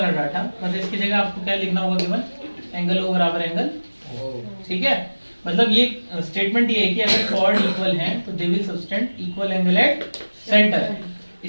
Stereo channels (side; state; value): both; inverted; correlation -1.00